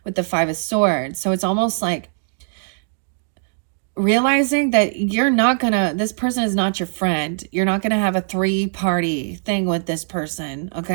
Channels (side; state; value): left; silent; digital silence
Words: with the 5 of Swords. So it's almost like realizing that you're not gonna, this person is not your friend. You're not gonna have a 3-party thing with this person,